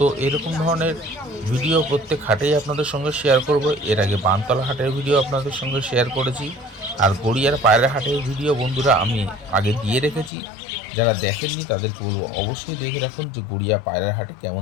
এরকম ধরনের ভিডিও প্রত্যেক হাটেই আপনাদের সঙ্গে শেয়ার করব। এর আগে বানতলা হাটের ভিডিও আপনাদের সঙ্গে শেয়ার করেছি, আর গড়িয়ার পায়রা হাটের ভিডিও বন্ধুরা আমি আগে দিয়ে রেখেছি। যারা দেখেননি তাদেরকে বলবো অবশ্যই দেখে রাখুন যে গড়িয়া পায়রা হাটে কেমন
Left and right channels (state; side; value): drops out; right; at 10.3 s